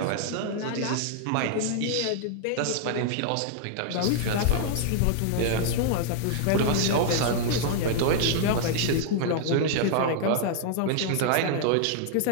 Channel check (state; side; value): different; both; correlation -0.01